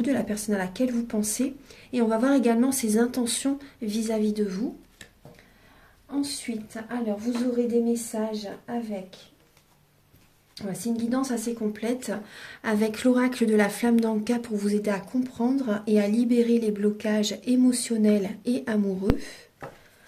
de la personne à laquelle vous pensez. Et on va voir également ses intentions vis-à-vis de vous. Ensuite, alors vous aurez des messages avec... C'est une guidance assez complète avec l'oracle de la flamme d'Anka pour vous aider à comprendre et à libérer les blocages émotionnels et amoureux.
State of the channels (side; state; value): both; identical; correlation 1.00